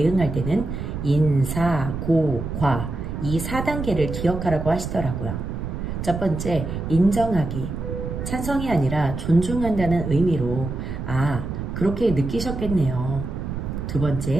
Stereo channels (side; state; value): right; noise; rumble, 5 dB below the sound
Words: 때는 인사, 고, 과 이 4단계를 기억하라고 하시더라고요. 첫 번째, 인정하기. 찬성이 아니라 존중한다는 의미로 그렇게 느끼셨겠네요. 두